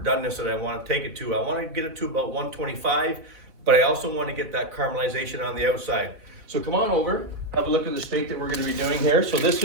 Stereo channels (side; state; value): left; late; 4.3 ms